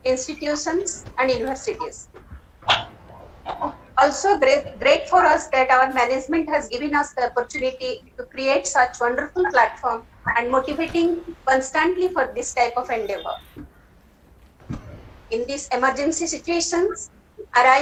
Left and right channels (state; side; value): identical; both; correlation 1.00